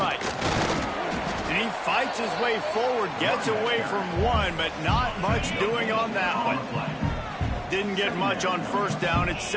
And he fights his way forward, gets away from one, but not much doing on that one. Didn't get much on first down. It's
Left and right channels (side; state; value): both; identical; correlation 1.00